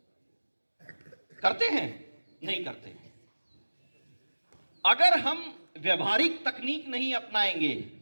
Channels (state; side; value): inverted; both; correlation -1.00